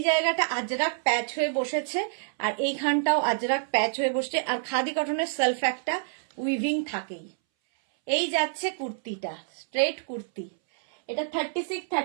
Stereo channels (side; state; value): left; silent; 60 dB below the other